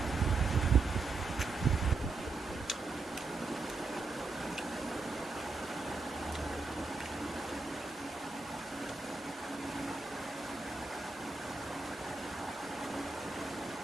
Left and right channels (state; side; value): quieter; left; 3.7 dB